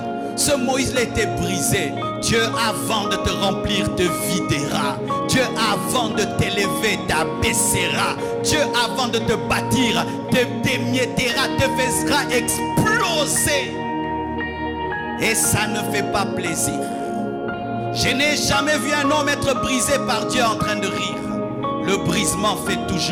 Ce Moïse-là était brisé. Dieu, avant de te remplir, te videra. Dieu, avant de t'élever, t'abaissera. Dieu, avant de te bâtir, te démiettera, te fera exploser. Et ça ne fait pas plaisir. Je n'ai jamais vu un homme être brisé par Dieu en train de rire. Le brisement fait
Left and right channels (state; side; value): identical; both; correlation 1.00